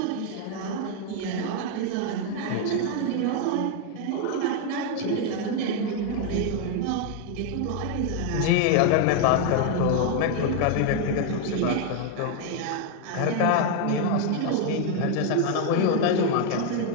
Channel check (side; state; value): both; different; correlation 0.00